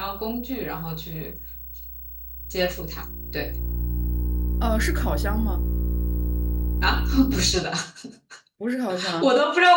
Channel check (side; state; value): both; identical; correlation 1.00